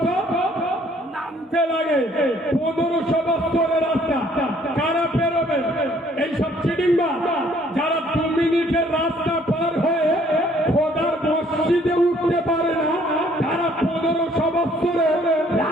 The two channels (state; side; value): normal; both; correlation 0.61